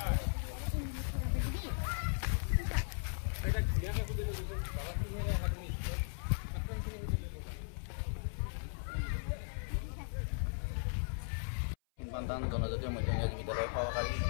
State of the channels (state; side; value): silent; right; 53 dB below the other